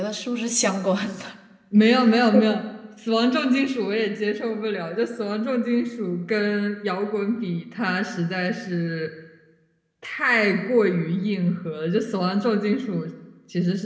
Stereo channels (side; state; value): both; identical; correlation 1.00